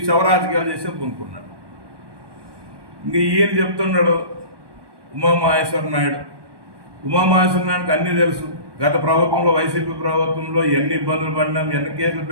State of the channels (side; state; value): left; late; 1.2 ms